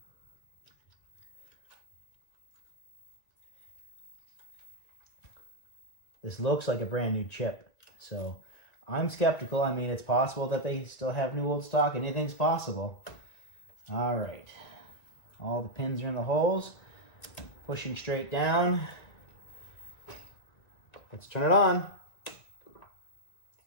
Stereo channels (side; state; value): right; late; 1.9 ms